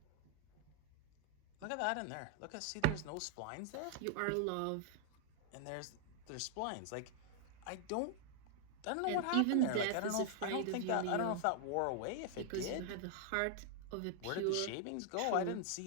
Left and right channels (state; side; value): different; both; correlation 0.00